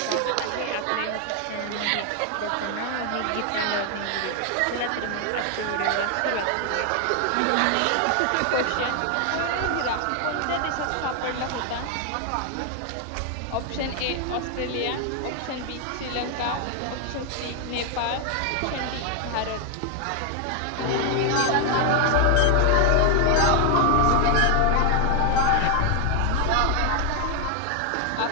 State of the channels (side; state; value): both; different; correlation 0.01